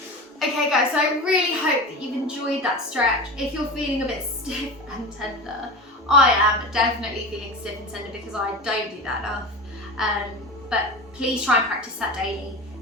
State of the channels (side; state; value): both; normal; correlation 0.28